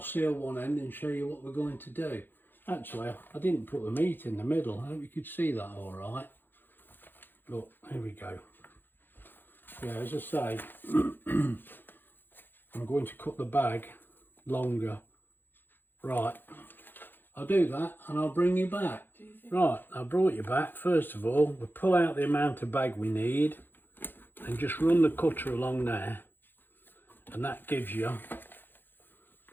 one end and show you what we're going to do. Actually, I didn't put the meat in the middle. I hope you could see that all right. Look, here we go. Yeah, as I say, I'm going to cut the bag longer. Right, I'll do that and I'll bring you back. Right, I brought you back. First of all, we'll pull out the amount of bag we need and just run the cutter along there, and that gives you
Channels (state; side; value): late; right; 0.096 ms